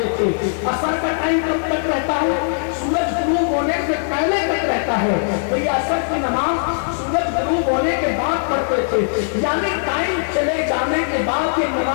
تھے۔ عصر کا ٹائم کب تک رہتا ہے؟ سورج غروب ہونے سے پہلے تک رہتا ہے، تو یہ عصر کی نماز سورج غروب ہونے کے بعد پڑھتے تھے، یعنی ٹائم چلے جانے کے بعد یہ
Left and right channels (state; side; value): silent; right; 66 dB below the other